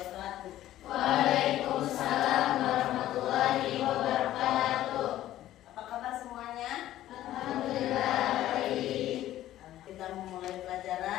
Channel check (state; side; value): quieter; right; 13.6 dB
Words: Waalaikumsalam warahmatullahi wabarakatuh. Apa kabar semuanya? Alhamdulillah baik. Kita memulai